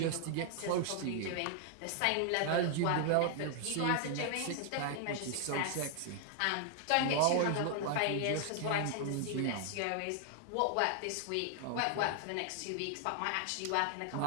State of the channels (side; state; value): both; different; correlation 0.00